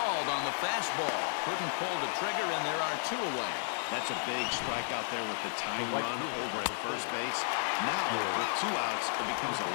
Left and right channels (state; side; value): silent; right; digital silence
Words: on the fastball. Couldn't pull the trigger, and there are 2 away. That's a big strikeout there with the tying run over at first base. Now, with 2 outs, it becomes a